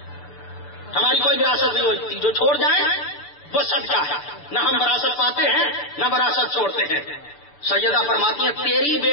ہماری کوئی وراثت نہیں ہوتی. جو چھوڑ جائے وہ صدقہ ہے. نہ ہم وراثت پاتے ہیں نہ وراثت چھوڑتے ہیں. سیدہ فرماتی ہیں تیری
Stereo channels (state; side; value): late; right; 6.9 ms